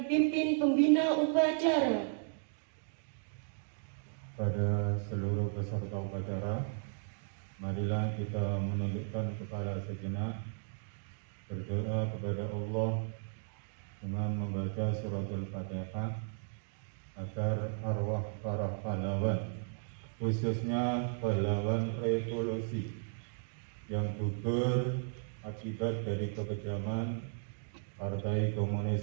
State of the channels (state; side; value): silent; left; digital silence